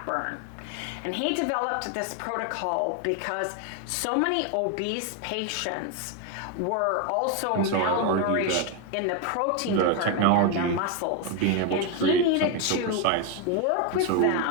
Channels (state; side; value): different; both; correlation 0.01